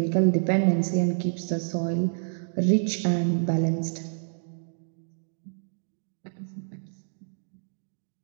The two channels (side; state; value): left; silent; digital silence